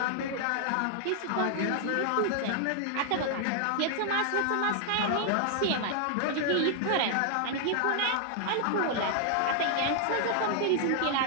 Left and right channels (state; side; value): different; both; correlation 0.00